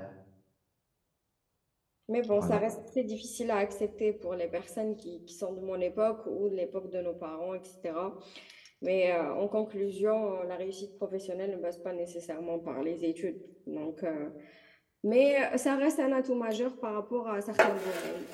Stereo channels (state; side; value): identical; both; correlation 1.00